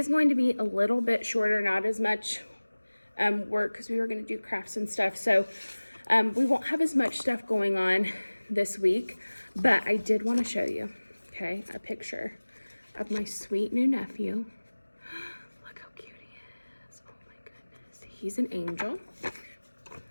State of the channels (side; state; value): both; inverted; correlation -1.00